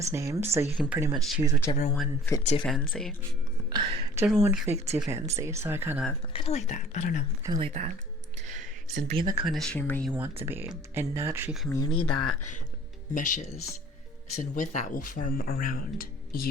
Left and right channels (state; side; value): normal; both; correlation 0.50